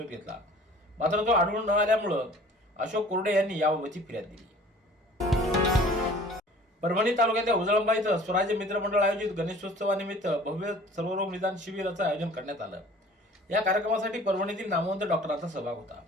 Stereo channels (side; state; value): both; normal; correlation 0.48